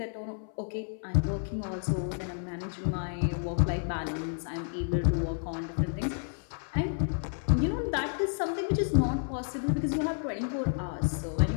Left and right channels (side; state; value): right; silent; 57 dB below the other